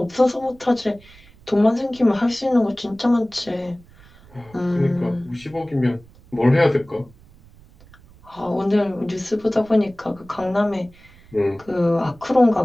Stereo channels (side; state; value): right; noise; rumble, 25 dB below the sound